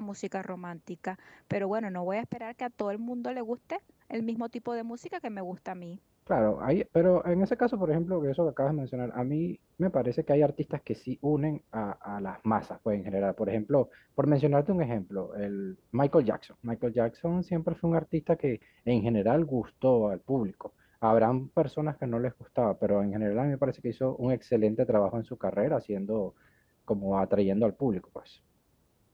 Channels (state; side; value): identical; both; correlation 1.00